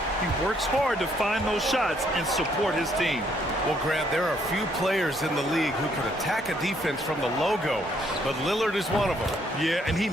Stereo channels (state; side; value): normal; both; correlation 0.69